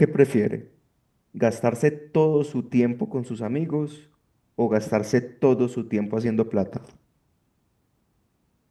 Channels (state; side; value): identical; both; correlation 1.00